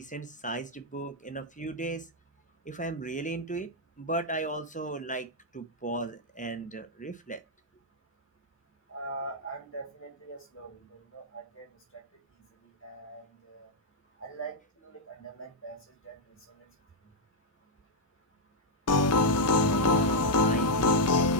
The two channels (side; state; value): both; normal; correlation -0.02